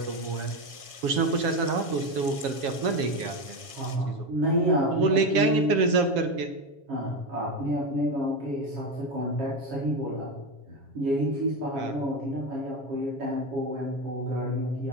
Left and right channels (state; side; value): late; left; 7.3 ms